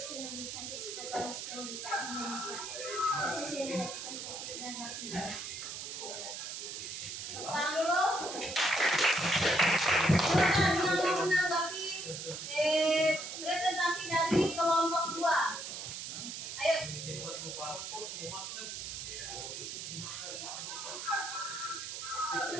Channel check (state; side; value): noise; right; hiss, 7 dB below the sound